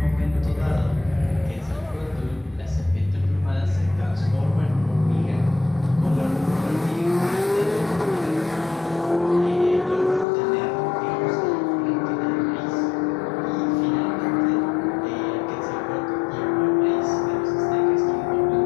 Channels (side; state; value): right; drops out; at 10.2 s